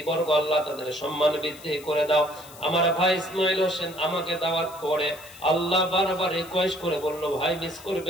আল্লাহ তাদের সম্মান বৃদ্ধি করে দাও। আমার ভাই ইসমাইল হোসেন আমাকে দাওয়াত করে আল্লাহ বারবার রিকোয়েস্ট করে বললো ভাই মিস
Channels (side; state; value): left; noise; hiss, 19 dB below the sound